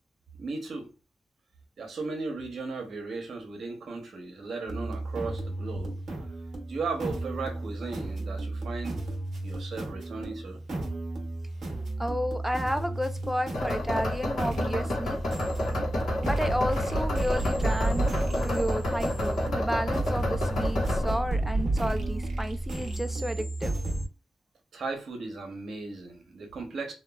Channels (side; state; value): both; normal; correlation 0.92